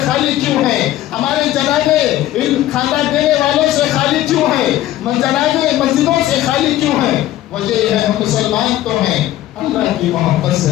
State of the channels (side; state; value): right; quieter; 14.0 dB